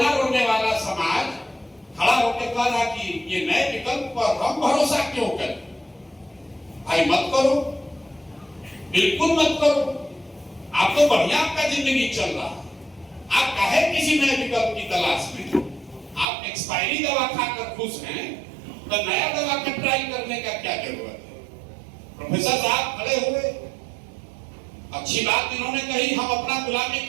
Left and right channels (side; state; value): left; drops out; at 16.2 s